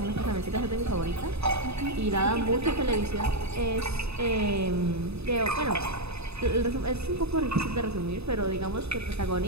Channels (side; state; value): left; late; 0.79 ms